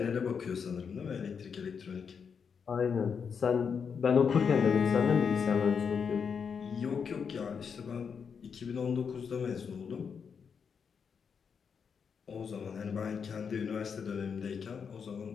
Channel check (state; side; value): quieter; right; 6.4 dB